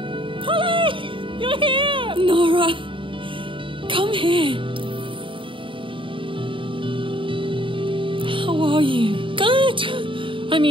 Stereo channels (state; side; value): late; left; 0.25 ms